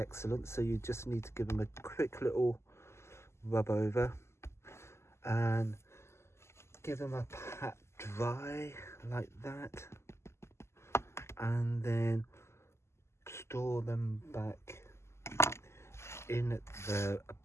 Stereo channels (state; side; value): late; right; 0.13 ms